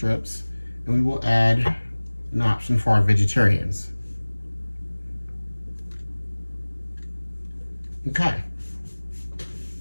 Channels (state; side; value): inverted; both; correlation -1.00